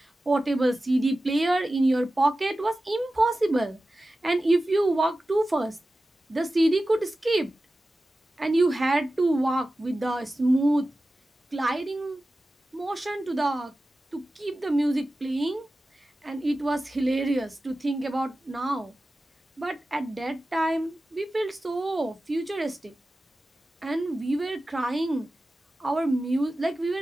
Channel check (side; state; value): both; normal; correlation 0.94